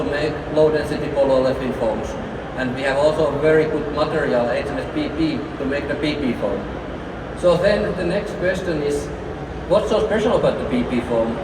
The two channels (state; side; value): identical; both; correlation 1.00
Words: make low-density polyolefin foams. And we have also a very good material, HMS PP, to make the PP foam. So then the next question is, what's so special about the PP foam?